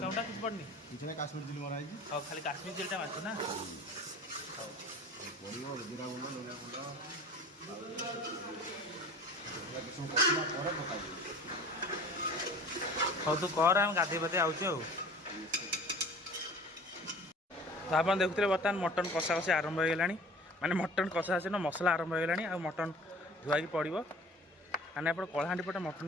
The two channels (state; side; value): normal; both; correlation 0.44